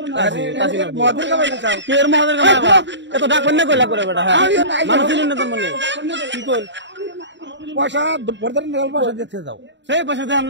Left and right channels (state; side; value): late; left; 0.53 ms